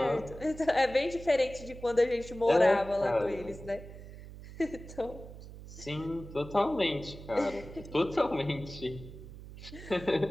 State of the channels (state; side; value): noise; right; hum, 14 dB below the sound